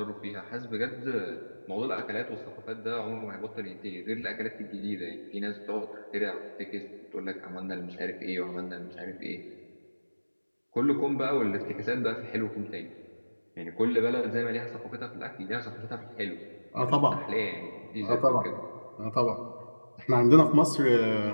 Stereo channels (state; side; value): inverted; both; correlation -1.00